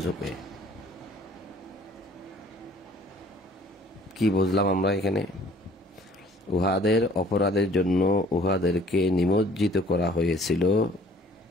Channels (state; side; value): normal; both; correlation 0.55